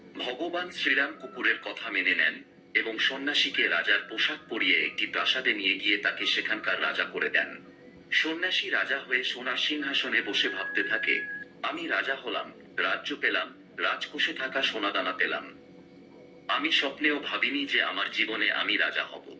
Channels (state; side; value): identical; both; correlation 1.00